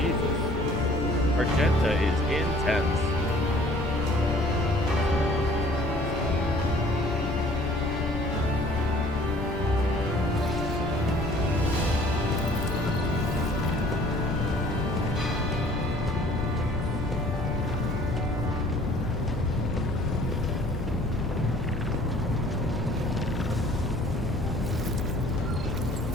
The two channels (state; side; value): noise; left; rumble, 5 dB below the sound